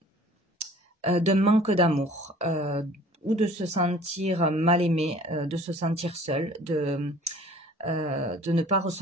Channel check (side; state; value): both; normal; correlation 0.50